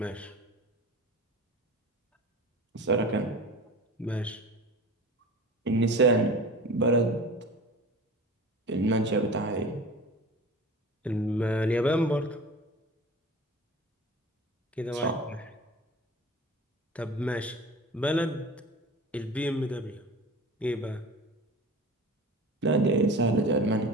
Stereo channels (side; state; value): both; normal; correlation 0.37